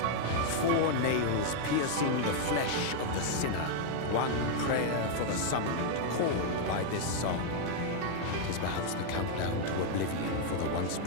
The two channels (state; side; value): different; both; correlation 0.00